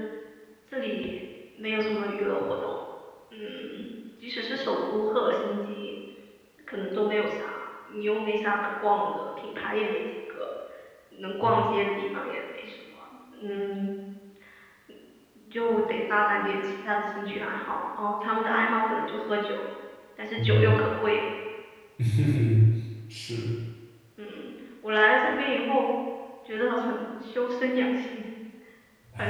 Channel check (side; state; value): both; identical; correlation 1.00